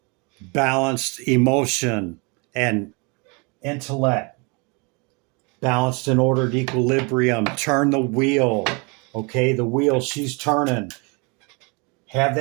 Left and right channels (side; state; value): left; quieter; 31.0 dB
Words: balanced emotion and intellect, balanced and ordered equilibrium. Turn the wheel, okay, the wheel she's turning. Have